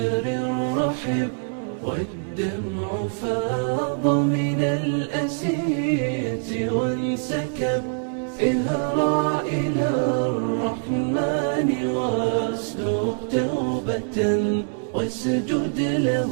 رحب، والدمع فاض من الأسية وانسكب. اهرع إلى الرحمن واسلك توبة، واسجد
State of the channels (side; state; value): left; silent; 63 dB below the other